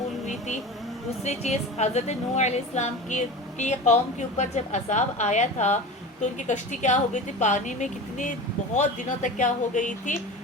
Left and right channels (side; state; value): both; normal; correlation 0.32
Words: ہوئی تھی. دوسری چیز حضرت نوح علیہ السلام کی قوم کے اوپر جب عذاب آیا تھا تو ان کی کشتی کیا ہو گئی تھی؟ پانی میں کتنی بہت دنوں تک کیا ہو گئی تھی؟